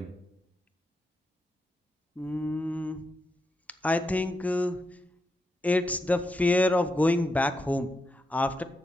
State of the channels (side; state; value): both; normal; correlation 0.84